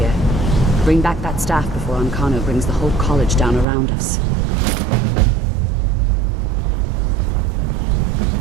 Bring back that staff before Ancano brings the whole college down around us.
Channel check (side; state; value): left; drops out; at 3.7 s